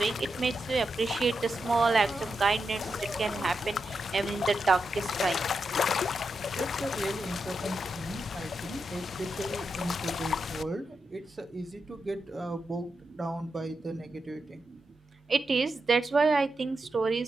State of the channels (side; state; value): both; normal; correlation 0.87